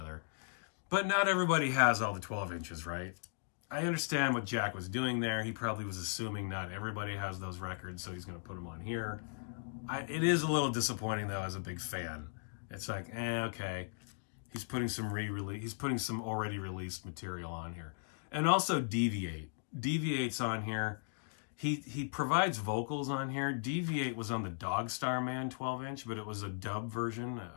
But not everybody has all the 12 inches, right? I understand what Jack was doing there. He probably was assuming not everybody has those records, so he's going to put them on here. It is a little disappointing, though, as a big fan. It's like, okay. He's putting some already released material on here. And also Deviate. Deviate's on here. He provides vocals on here. Deviate was on the Dog Star Man 12-inch, but it was a dub version,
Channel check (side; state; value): right; silent; digital silence